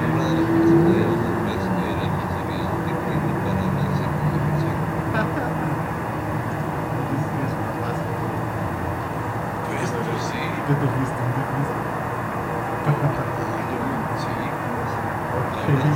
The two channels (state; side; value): identical; both; correlation 1.00